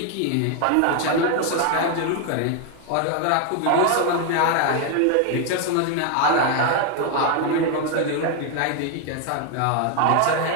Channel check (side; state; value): both; different; correlation 0.01